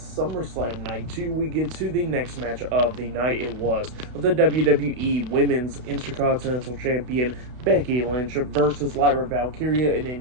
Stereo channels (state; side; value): late; left; 32 ms